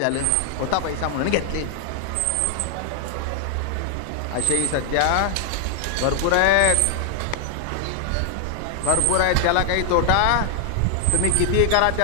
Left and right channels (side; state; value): both; different; correlation 0.00